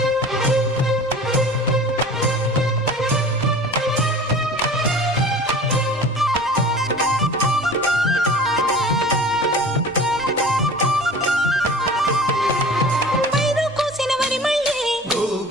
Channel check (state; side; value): normal; both; correlation 0.41